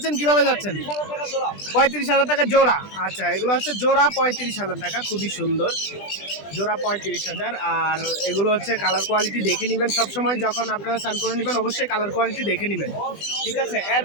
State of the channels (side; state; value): right; late; 20 ms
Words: কিভাবে যাচ্ছেন? 35,000 টাকা জোড়া। আচ্ছা, এগুলো হচ্ছে জোড়া 35,000 টাকা। খুবই সুন্দর জোড়া 35,000। আর এগুলো হচ্ছে কালার কোয়ালিটি দেখে নেবেন সবসময়, যখন আপনারা স্নান করে নেবেন অবশ্যই কালার কোয়ালিটি দেখে নেবেন, ঠিক আছে?